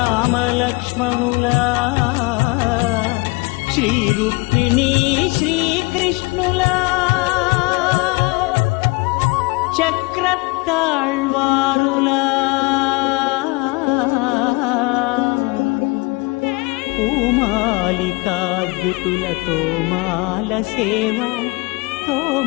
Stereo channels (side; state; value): right; quieter; 26.0 dB